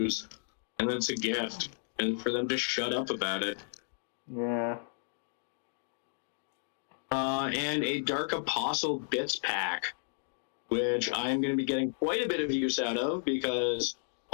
And that's a gift. And for them to shut up about it. Yeah. And a Dark Apostle Bits pack, which I'm going to be getting quite a bit of use out of because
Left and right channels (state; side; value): silent; right; digital silence